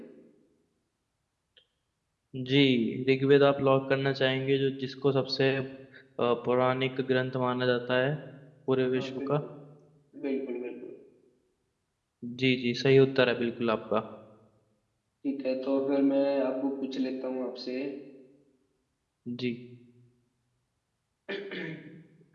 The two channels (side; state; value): both; identical; correlation 1.00